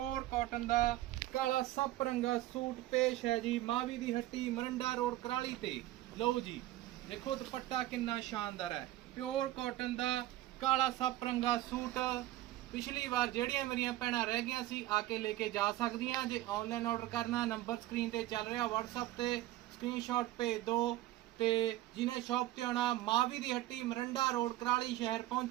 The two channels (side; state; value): left; quieter; 15.5 dB